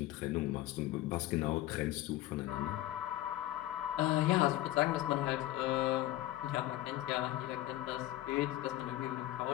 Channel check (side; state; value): right; quieter; 15.3 dB